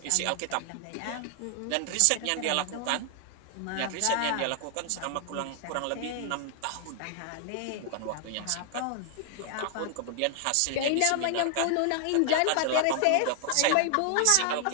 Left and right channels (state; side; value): different; both; correlation 0.00